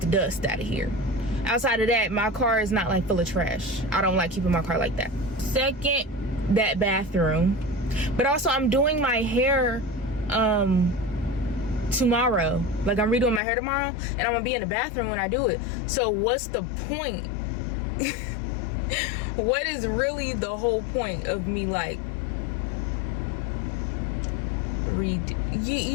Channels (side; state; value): right; drops out; at 13.4 s